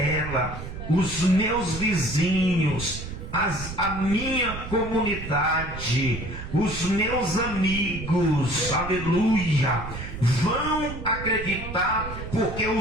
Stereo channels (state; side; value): noise; right; rumble, 9 dB below the sound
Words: os meus vizinhos, a minha comunidade, os meus amigos, aleluia, vão acreditar, porque